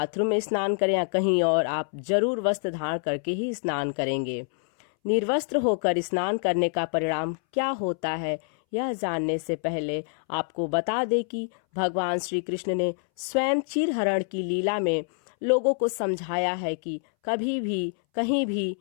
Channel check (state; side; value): silent; right; 61 dB below the other